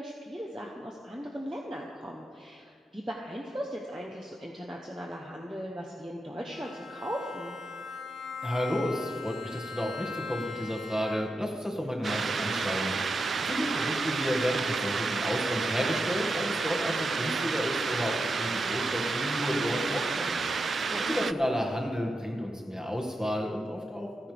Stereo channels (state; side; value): normal; both; correlation 0.87